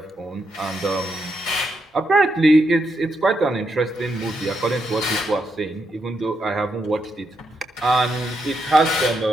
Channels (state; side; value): normal; both; correlation 0.81